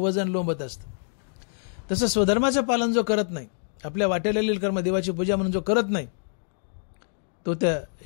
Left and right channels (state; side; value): silent; right; digital silence